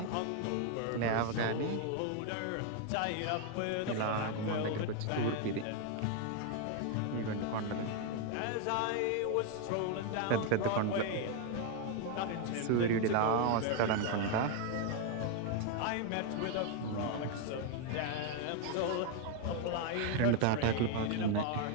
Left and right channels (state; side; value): different; both; correlation 0.01